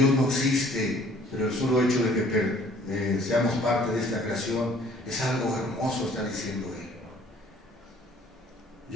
no existe, pero el solo hecho de que seamos parte de esta creación es algo hermoso, está diciendo él.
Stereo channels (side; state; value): both; normal; correlation 0.56